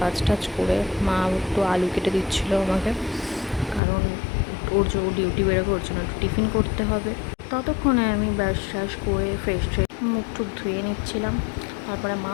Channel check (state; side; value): drops out; right; at 3.8 s